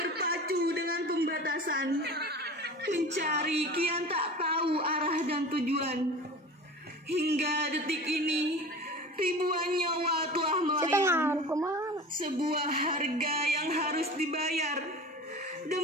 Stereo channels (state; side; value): normal; both; correlation 0.36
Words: dengan pembatasan. Mencari kian tak tahu arah dan tujuan. Hingga detik ini, ribuan nyawa telah melayang. Sebuah harga yang harus dibayar